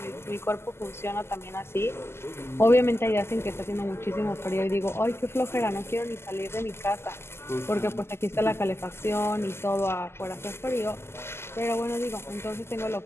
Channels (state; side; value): late; right; 0.12 ms